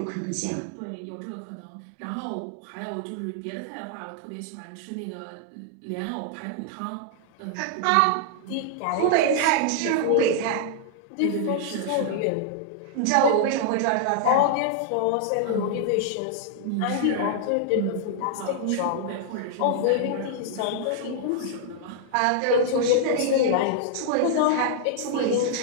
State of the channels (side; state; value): both; different; correlation -0.01